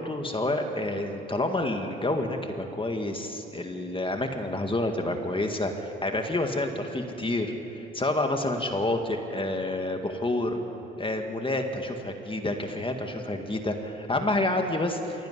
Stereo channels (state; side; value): normal; both; correlation 0.54